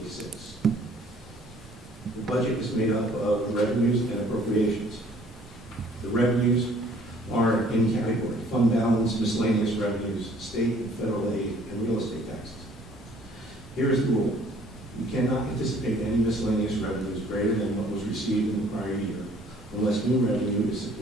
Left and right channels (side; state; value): both; normal; correlation 0.57